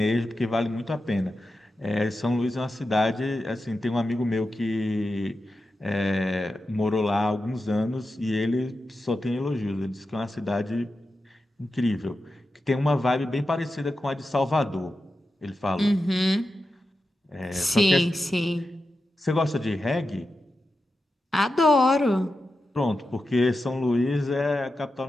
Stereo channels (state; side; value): normal; both; correlation 0.90